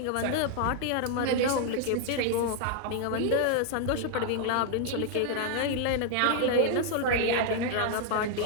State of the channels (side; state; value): both; different; correlation 0.00